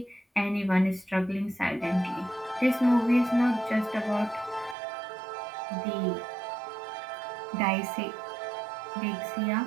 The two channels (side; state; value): left; drops out; at 4.8 s